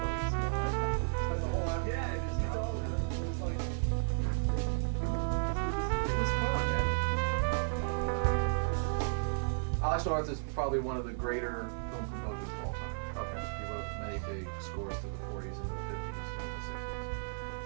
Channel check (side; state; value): left; silent; digital silence